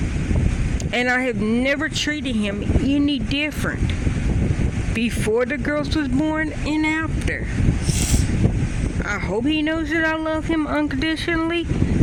And I have never treated him any different before the girls was born and after. I hope he knows that I love him unconditionally,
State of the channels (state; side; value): identical; both; correlation 1.00